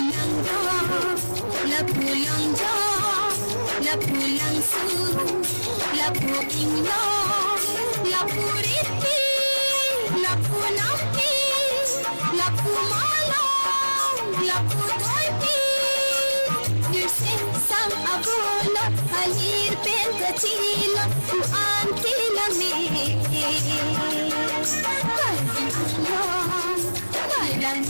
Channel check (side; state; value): both; inverted; correlation -1.00